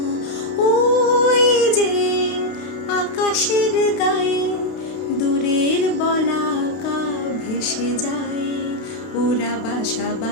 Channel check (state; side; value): late; right; 32 ms